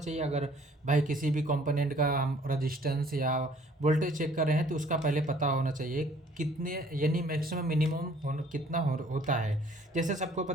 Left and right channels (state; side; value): normal; both; correlation 0.57